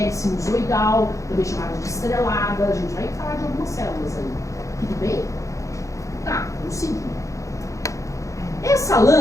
sinusoidal, também chamada de estrelada. A gente vai falar de algumas células aí. Tudo bem? Tá, vamos seguir. Essa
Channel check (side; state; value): right; late; 0.15 ms